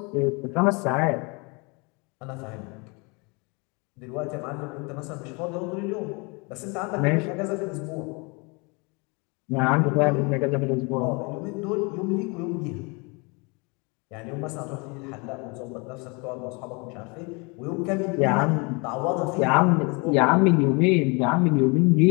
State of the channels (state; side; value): quieter; right; 30.1 dB